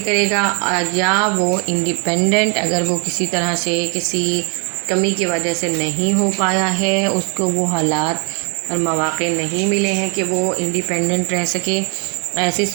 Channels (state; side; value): quieter; left; 35.4 dB